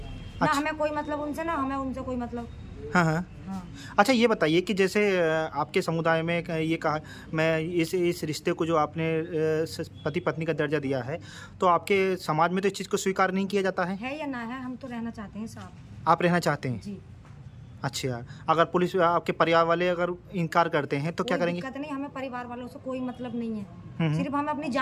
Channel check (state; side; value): identical; both; correlation 1.00